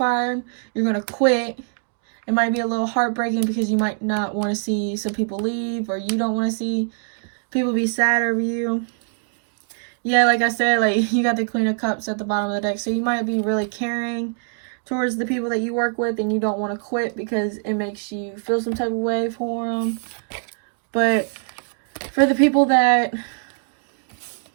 you're going to quit. It might be a little heartbreaking because you might not want to see some people leave, or you don't want to see people be sad over you. Yeah, like I said, like you got the Queen of Cups at the bottom of the deck. So you might be really caring towards the people that you work with, and you don't want to quit because it makes you feel some type of way for them. But for the people that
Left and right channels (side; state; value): left; silent; digital silence